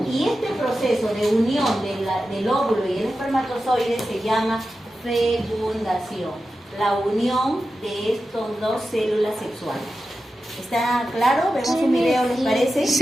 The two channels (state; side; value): normal; both; correlation 0.92